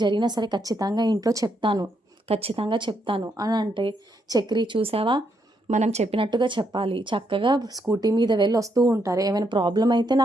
జరిగినా సరే ఖచ్చితంగా ఇంట్లో చెప్తాను, ఖచ్చితంగా చెప్తాను అని అంటే చక్రి, చూసావా, మనం చెప్పినట్టుగా చెప్పాలి, చక్కగా స్కూటీ మీద వెళ్ళి వస్తూ ఉంటారు, ఏమైనా ప్రాబ్లం అయితే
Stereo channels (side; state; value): both; normal; correlation 0.77